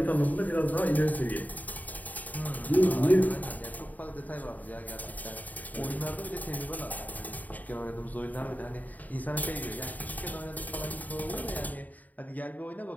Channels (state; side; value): late; right; 0.078 ms